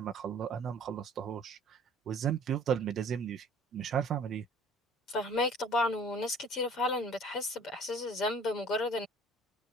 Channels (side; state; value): both; normal; correlation 0.51